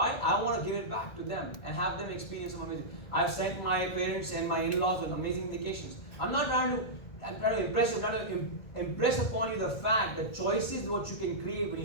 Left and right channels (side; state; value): right; late; 1.8 ms